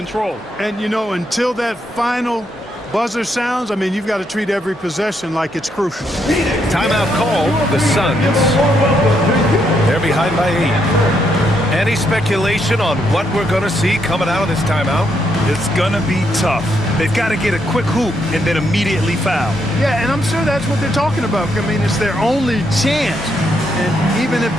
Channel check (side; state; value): both; normal; correlation 0.77